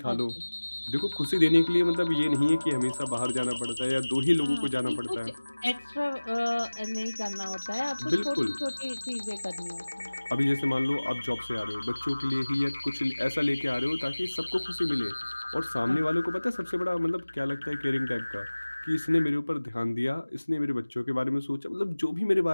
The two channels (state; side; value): inverted; both; correlation -1.00